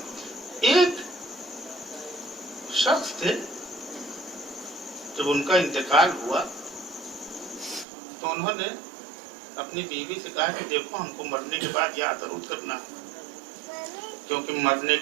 एक शख्स थे, जब उनका इंतकाल हुआ तो उन्होंने अपनी बीवी से कहा कि देखो, हमको मरने के बाद याद जरूर करना, क्योंकि मरने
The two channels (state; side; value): drops out; left; at 7.9 s